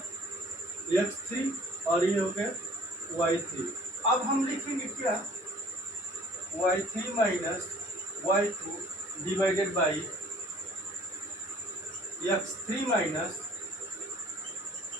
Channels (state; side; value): normal; both; correlation 0.52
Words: x3 और ये हो गया y3। अब हम लिखेंगे क्या, y3 minus y2 divided by x3 minus